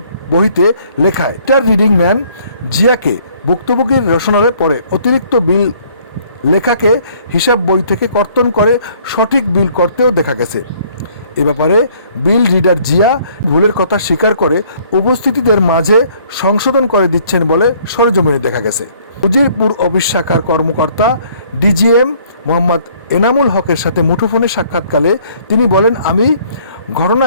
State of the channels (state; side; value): inverted; both; correlation -0.60